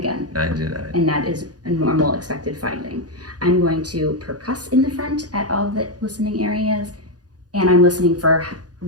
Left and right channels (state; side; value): late; left; 0.68 ms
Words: 99. And that is a normal expected finding. I'm going to percuss in the front at all the listening areas, and I'm listening for